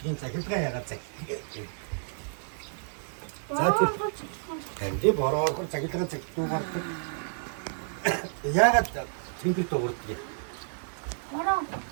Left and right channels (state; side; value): silent; left; digital silence